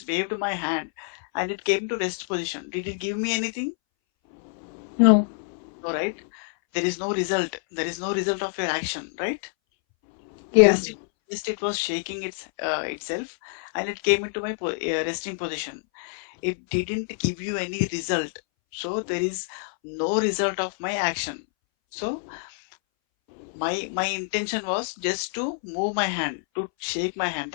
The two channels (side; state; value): right; silent; 60 dB below the other